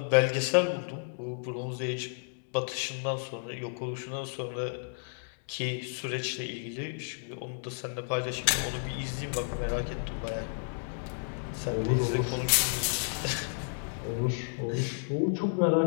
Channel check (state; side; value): silent; right; digital silence